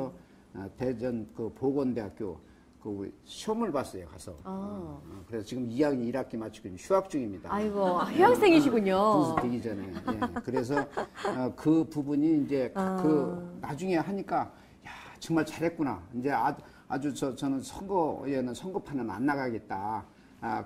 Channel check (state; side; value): identical; both; correlation 1.00